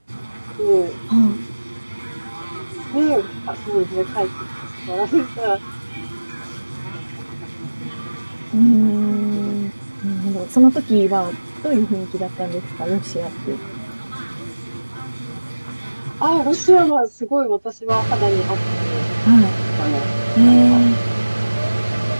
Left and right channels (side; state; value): both; inverted; correlation -1.00